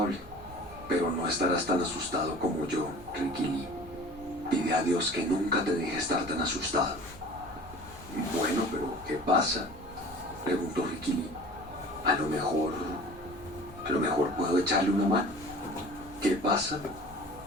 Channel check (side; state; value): both; normal; correlation 0.43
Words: pero no estarás tan asustado como yo, Ricky Lee. Pide a Dios que nunca te deje estar tan asustado». «Bueno, pero ¿qué pasa?», preguntó Ricky Lee. A lo mejor puedo echarle una mano». «¿Qué pasa?».